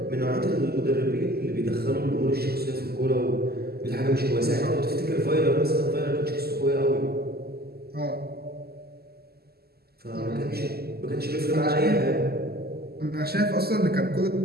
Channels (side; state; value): left; late; 0.46 ms